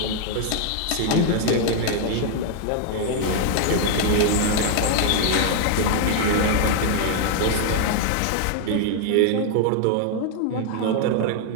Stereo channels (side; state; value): both; different; correlation 0.00